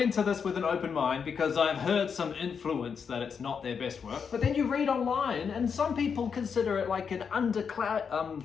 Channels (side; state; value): right; quieter; 6.4 dB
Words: into this with an open mind because I've heard some influence that it's not their best work. But then you read online, and some people consider it like an underground